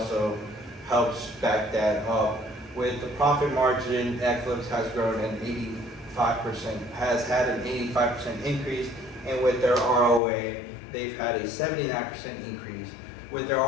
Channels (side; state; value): right; drops out; at 10.2 s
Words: helps back that up. With the profit margin, Netflix has grown an 85%, has had an 85% increase, and with their ROA, they've had a 79% increase. With their